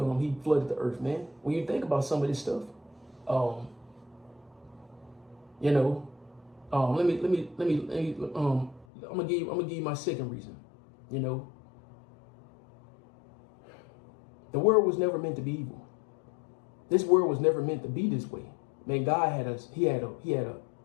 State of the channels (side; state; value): right; drops out; at 8.8 s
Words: flooded the earth, man. When you think about some of this stuff, I'm gonna give you my second reason. The world was never meant to be evil. This world was never meant to be this way. Man, God had us.